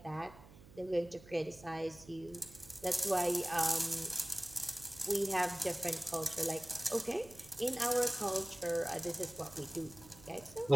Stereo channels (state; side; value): noise; right; hum, 20 dB below the sound